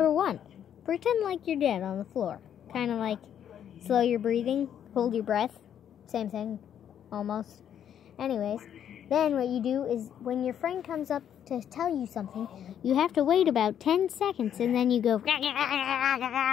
1, pretend like you're dead on the floor. Kind of like slow your breathing, hold your breath, same thing, almost. Anyways, then what you do is when your friend comes up to tell you something, you have to wait about 10 seconds and then you go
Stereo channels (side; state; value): right; quieter; 9.4 dB